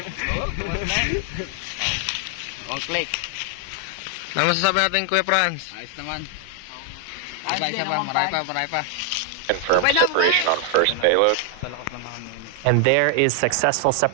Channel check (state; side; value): different; both; correlation 0.00